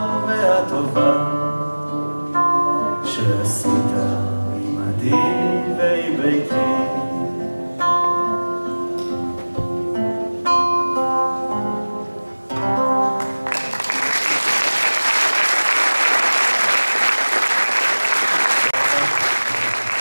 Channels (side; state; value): both; inverted; correlation -1.00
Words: והטובה שעשית עמדי